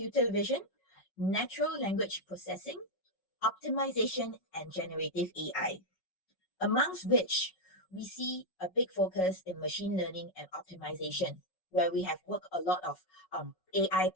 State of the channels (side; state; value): right; late; 5.4 ms